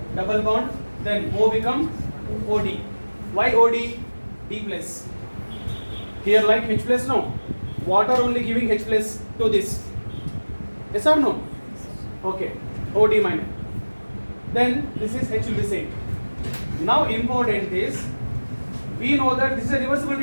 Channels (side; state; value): both; inverted; correlation -1.00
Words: double bond, then O become OD. Why OD? D plus. Here like H plus, no. Water only giving H plus to this. Yes or no? Okay. OD minus. Then this is H will be same. Now important is, we know that this is a reversible